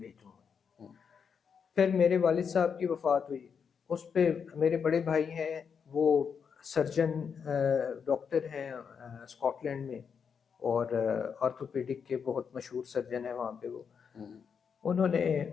گا۔ پھر میرے والد صاحب کی وفات ہوئی، اس پہ میرے بڑے بھائی ہیں، وہ سرجن ڈاکٹر ہیں اسکاٹ لینڈ میں، اور آرتھوپیڈک کے بہت مشہور سرجن ہیں وہاں پہ وہ، انہوں نے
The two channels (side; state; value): right; quieter; 6.6 dB